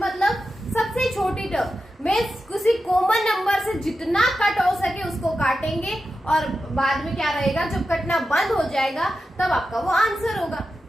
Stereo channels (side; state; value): both; normal; correlation 0.90